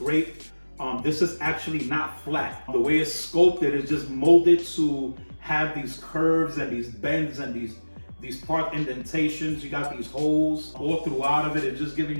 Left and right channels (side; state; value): both; inverted; correlation -1.00